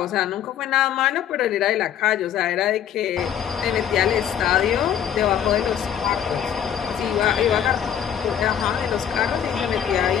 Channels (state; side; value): quieter; right; 9.5 dB